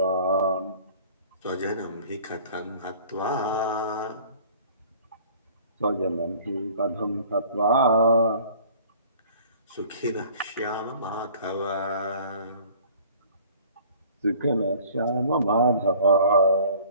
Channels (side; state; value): both; inverted; correlation -0.50